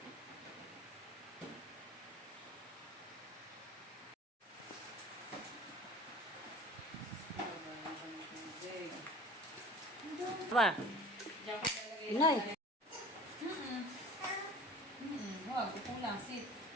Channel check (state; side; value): normal; both; correlation 0.42